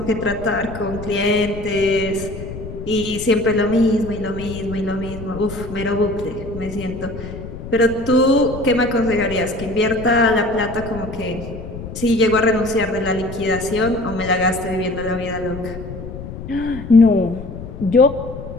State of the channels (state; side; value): noise; left; rumble, 11 dB below the sound